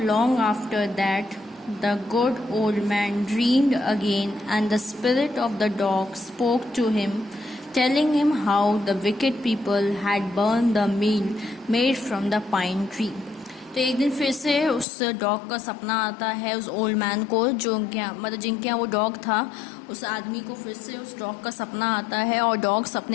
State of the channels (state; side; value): drops out; right; at 14.9 s